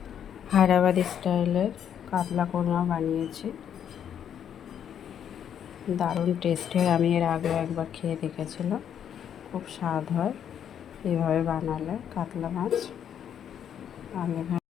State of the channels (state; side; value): quieter; right; 9.0 dB